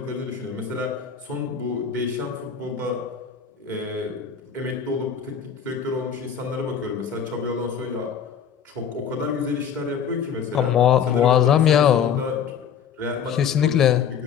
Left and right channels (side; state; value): right; quieter; 7.6 dB